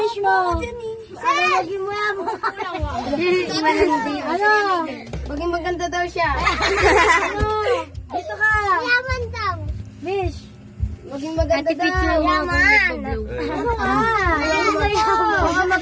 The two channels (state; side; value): identical; both; correlation 1.00